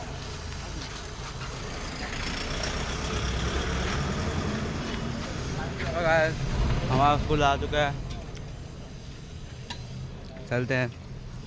हमारा स्कूल आ चुका है, चलते हैं.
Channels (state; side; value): identical; both; correlation 1.00